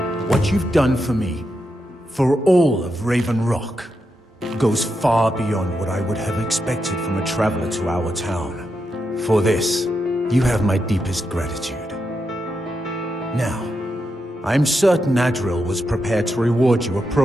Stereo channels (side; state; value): both; normal; correlation 0.85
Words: What you've done for me, for all of Raven Rock, goes far beyond what I would have expected from a traveler to our town. For this, you have my deepest gratitude. Now, I'm certain Adril was prepared to reward you